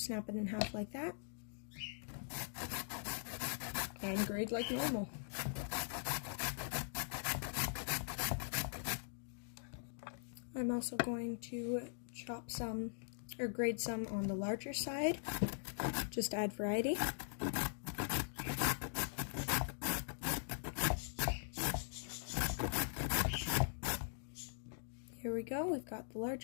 it in half like that. And grate like normal. I'm also going to chop some, or grate some on the larger side, just to add variety. Here we go, we've got the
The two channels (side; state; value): right; silent; digital silence